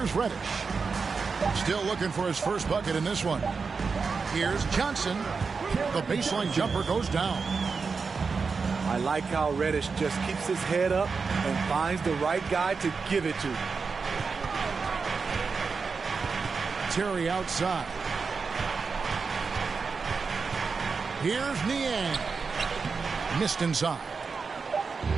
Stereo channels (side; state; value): left; quieter; 4.9 dB